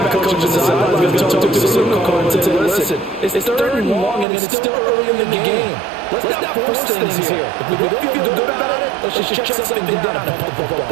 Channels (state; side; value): drops out; left; at 4.2 s